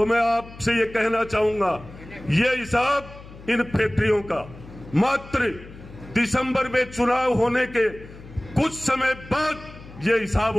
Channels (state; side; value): noise; left; hum, 17 dB below the sound